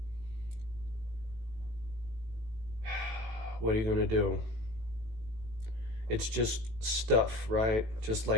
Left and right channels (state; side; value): late; left; 18 ms